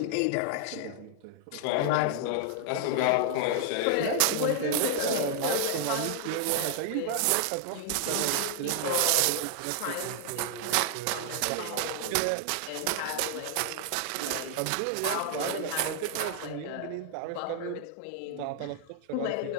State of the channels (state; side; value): different; both; correlation 0.00